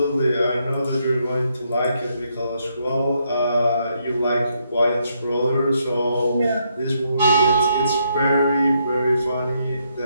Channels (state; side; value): inverted; both; correlation -0.76